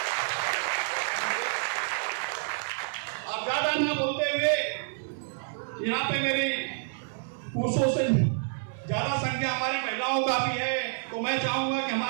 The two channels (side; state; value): left; silent; 59 dB below the other